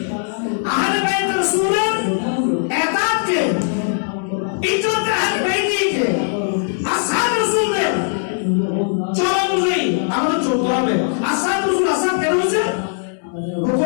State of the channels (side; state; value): right; silent; digital silence